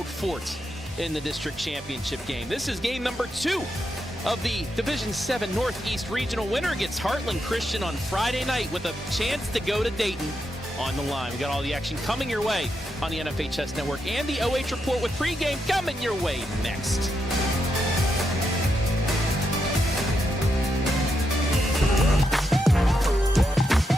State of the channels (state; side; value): normal; both; correlation 0.83